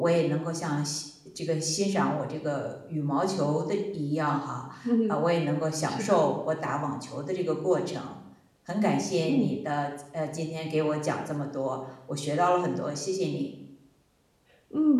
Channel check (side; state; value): both; identical; correlation 1.00